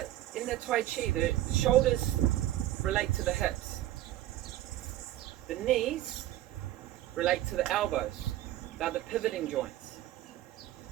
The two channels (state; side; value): quieter; left; 14.2 dB